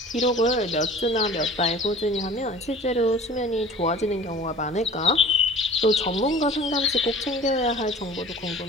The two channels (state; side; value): normal; both; correlation 0.44